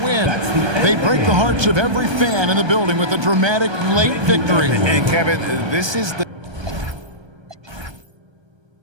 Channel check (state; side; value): late; left; 1.3 ms